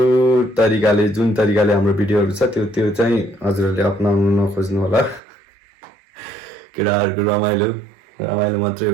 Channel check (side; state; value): left; drops out; at 5.2 s